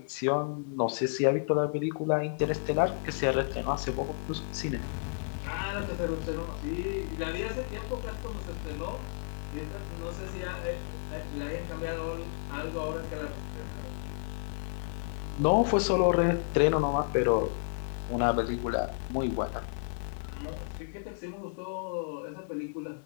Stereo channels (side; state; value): right; silent; digital silence